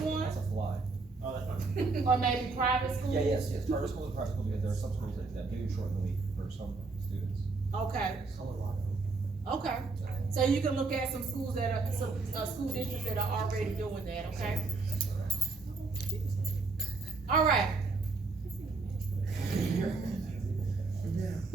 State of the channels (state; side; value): quieter; left; 3.9 dB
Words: That's a fly. or maybe private schools? Yes, charter school and private school, because there are some schools that do shorten the week for some students. Okay. Okay, so you can look at some schools that are, some, school districts that are already doing that, okay? All right.